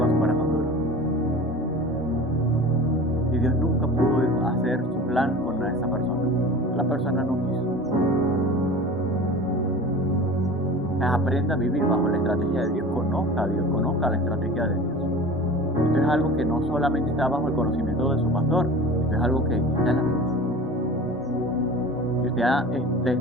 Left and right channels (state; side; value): normal; both; correlation 0.37